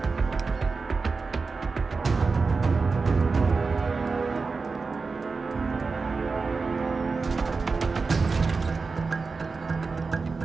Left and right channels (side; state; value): left; quieter; 4.4 dB